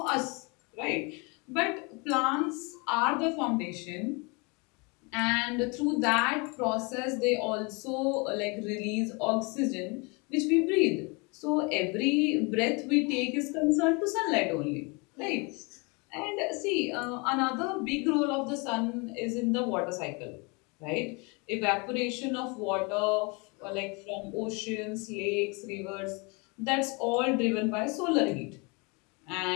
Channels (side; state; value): right; quieter; 30.0 dB